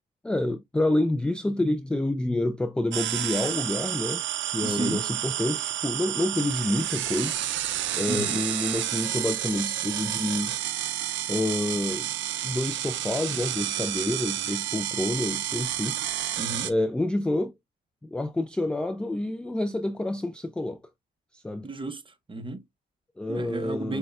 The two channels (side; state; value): both; normal; correlation 0.67